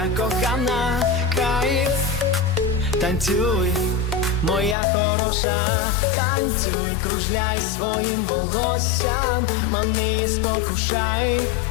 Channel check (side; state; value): right; drops out; at 4.8 s